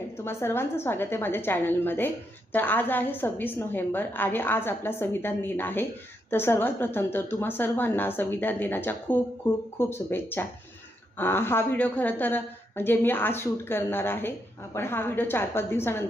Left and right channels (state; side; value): normal; both; correlation 0.80